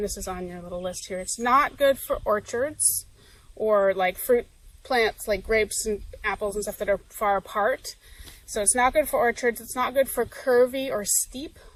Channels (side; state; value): both; identical; correlation 1.00